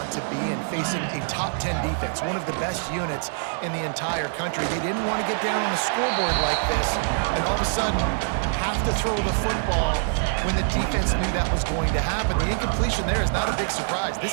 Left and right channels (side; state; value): left; silent; digital silence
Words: to be in, facing a top 10 defense, one of the best units in the entire country. They didn't want to get down on the scoreboard like this and all of a sudden have to throw the football when the defense knew that was going to happen. The incompletion there is not a big surprise.